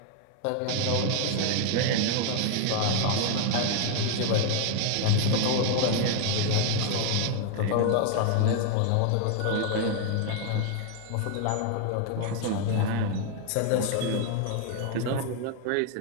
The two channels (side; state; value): both; different; correlation 0.00